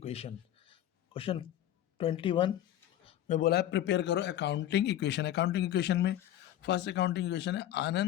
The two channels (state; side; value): quieter; right; 12.3 dB